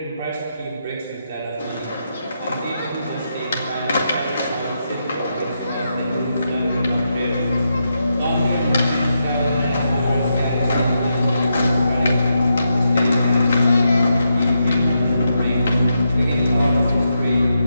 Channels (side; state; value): both; inverted; correlation -0.84